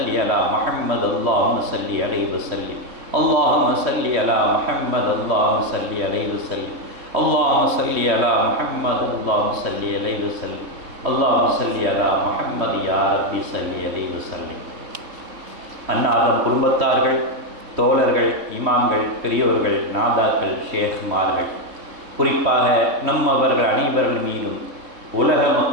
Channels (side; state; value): left; late; 3.2 ms